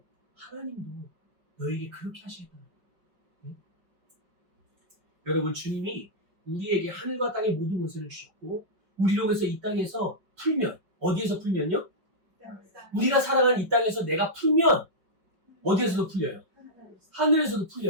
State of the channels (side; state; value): left; late; 5.3 ms